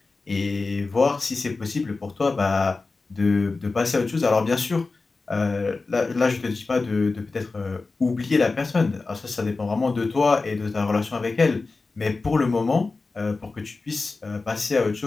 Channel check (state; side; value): quieter; right; 3.8 dB